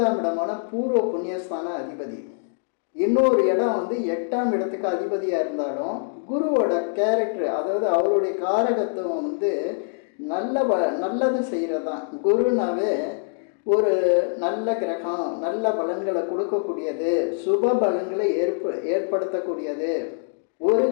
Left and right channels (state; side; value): silent; right; digital silence